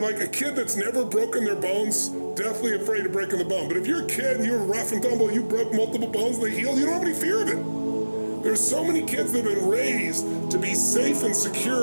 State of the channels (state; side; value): inverted; both; correlation -1.00